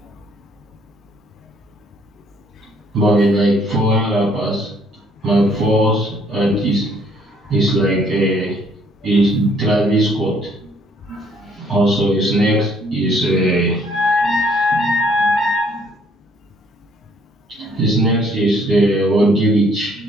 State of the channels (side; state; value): both; normal; correlation 0.64